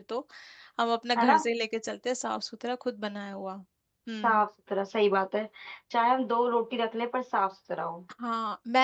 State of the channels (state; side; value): identical; both; correlation 1.00